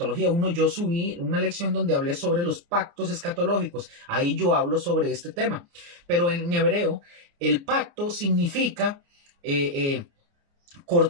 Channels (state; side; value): late; left; 29 ms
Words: yo subí una lección donde hablé sobre los pactos escatológicos. Ahí yo hablo sobre este tema. Pero en hebreo, el pacto significa